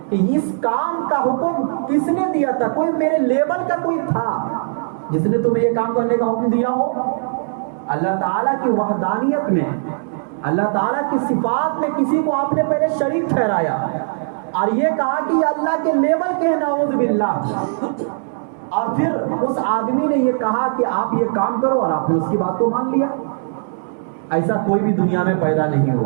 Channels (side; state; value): left; silent; 66 dB below the other